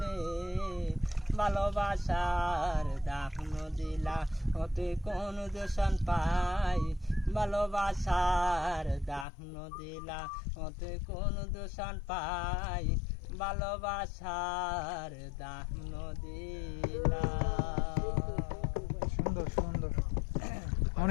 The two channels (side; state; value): right; drops out; at 9.2 s